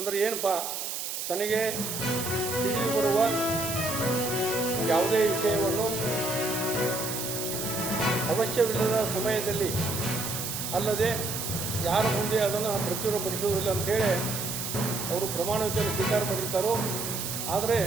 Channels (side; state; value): right; noise; hiss, 4 dB below the sound